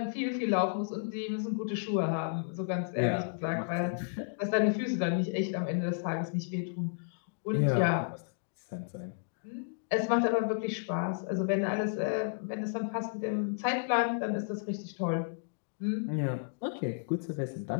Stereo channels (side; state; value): right; silent; digital silence